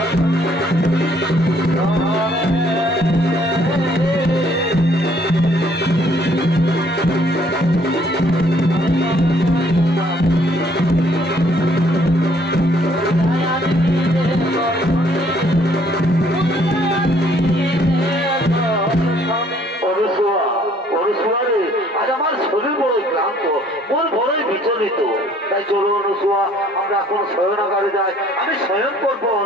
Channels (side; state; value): both; normal; correlation 0.62